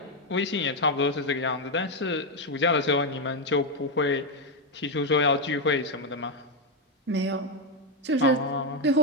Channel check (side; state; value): both; normal; correlation 0.04